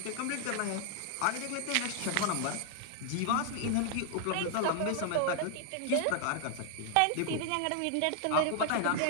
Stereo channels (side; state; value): both; different; correlation 0.00